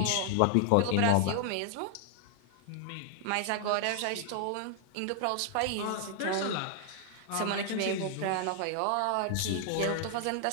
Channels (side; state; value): both; different; correlation 0.00